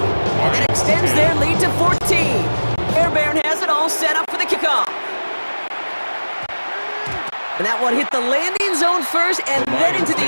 And that extends their lead to 14. Fairbairn has it all set up for the kickoff. And that one hit the landing zone first and then into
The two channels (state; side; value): inverted; both; correlation -1.00